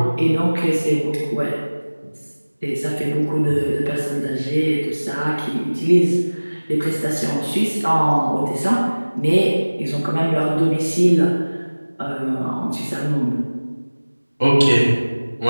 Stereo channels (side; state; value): both; inverted; correlation -1.00